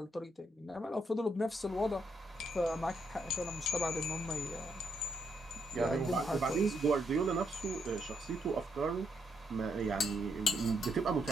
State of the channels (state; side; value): normal; both; correlation 0.77